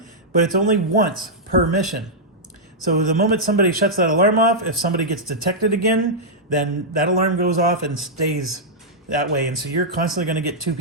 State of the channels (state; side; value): normal; both; correlation -0.08